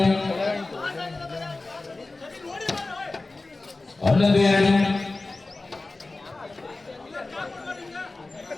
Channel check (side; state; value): right; quieter; 3.3 dB